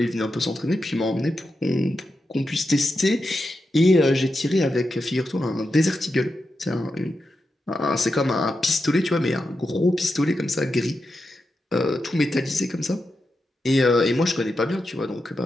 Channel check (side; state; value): both; normal; correlation 0.88